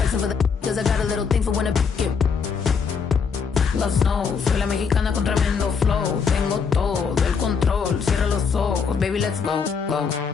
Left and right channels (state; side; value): quieter; right; 5.8 dB